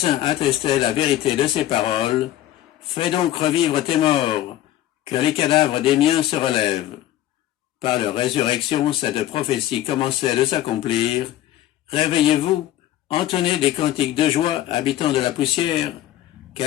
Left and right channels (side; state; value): right; quieter; 13.5 dB